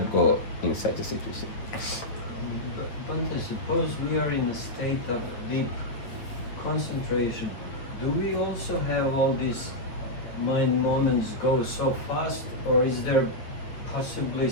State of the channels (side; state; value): right; late; 8.6 ms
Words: go in such a situation. Bhante, suppose we are in a state of deep concentration. Do we also have all these mind moments go so fast, or is there possibly